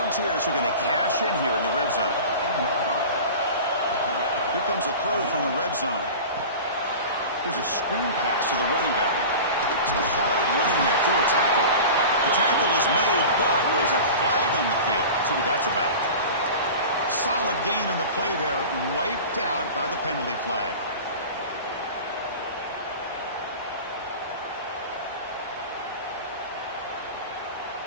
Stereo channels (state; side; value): inverted; both; correlation -0.34